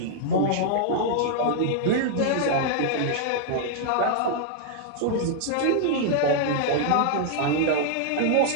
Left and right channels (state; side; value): different; both; correlation -0.01